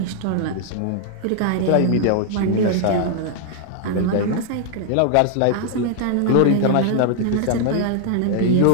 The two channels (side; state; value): both; different; correlation 0.00